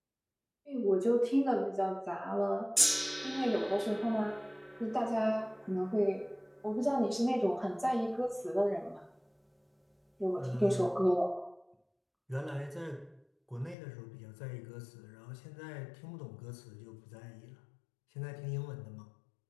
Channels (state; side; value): drops out; right; at 13.8 s